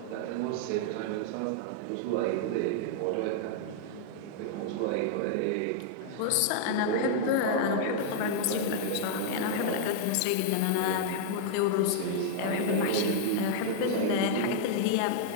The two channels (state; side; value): different; both; correlation -0.01